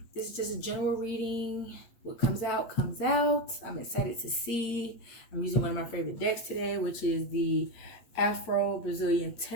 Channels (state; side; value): late; right; 8.4 ms